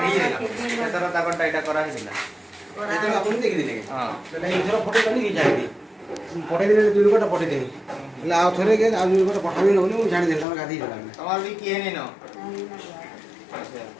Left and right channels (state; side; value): drops out; right; at 10.5 s